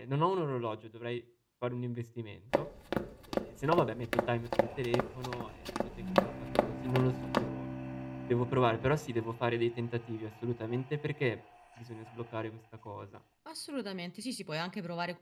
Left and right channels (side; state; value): both; identical; correlation 1.00